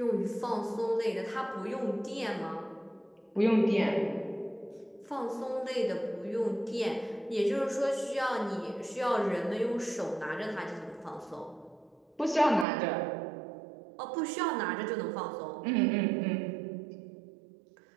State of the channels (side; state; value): left; drops out; at 12.7 s